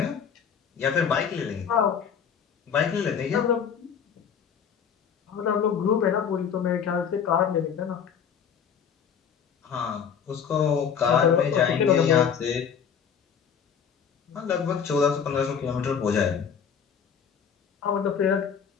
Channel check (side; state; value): right; quieter; 7.4 dB